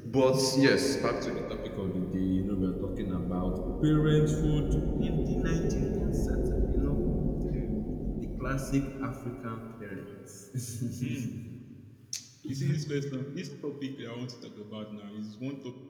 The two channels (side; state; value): both; identical; correlation 1.00